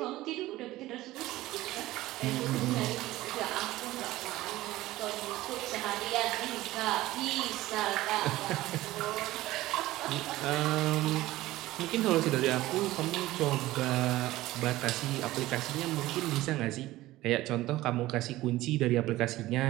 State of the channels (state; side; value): quieter; left; 16.9 dB